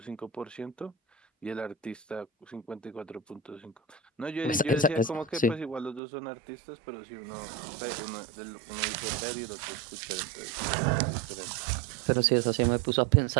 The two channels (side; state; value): left; drops out; at 6.0 s